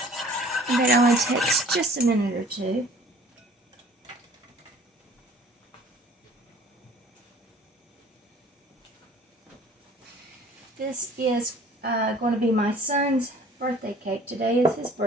And that only takes just a minute or 2. This is going to be my son's birthday cake. Today is his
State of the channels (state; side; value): normal; both; correlation 0.51